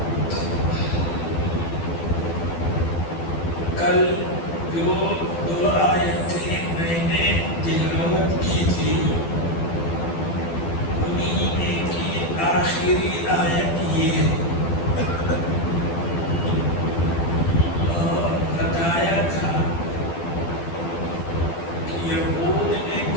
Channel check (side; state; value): right; late; 12 ms